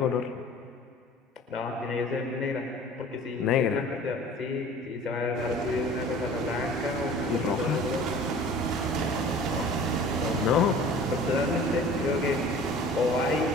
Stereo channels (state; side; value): normal; both; correlation 0.45